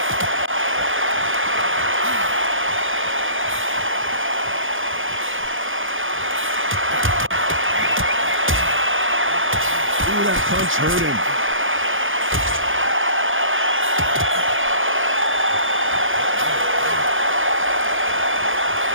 Ooh, that punch hurt him.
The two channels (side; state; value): left; late; 0.58 ms